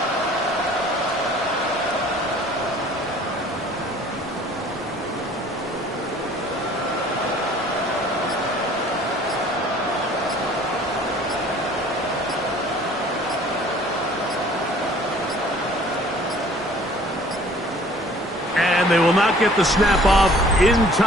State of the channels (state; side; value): normal; both; correlation 0.53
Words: And they will not get the snap off in